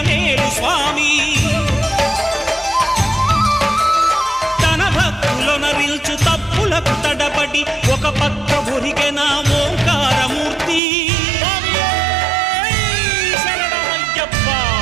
స్వామి తన భక్తులనరిల్చు తప్పులకు తడబడి ఒక పక్క ఒరిగెన ఓంకారమూర్తి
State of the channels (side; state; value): left; drops out; at 10.8 s